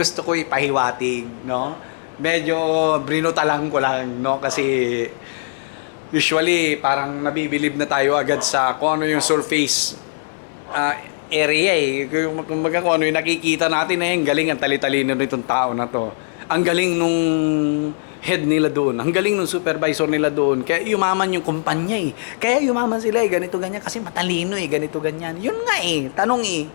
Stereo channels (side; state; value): right; silent; digital silence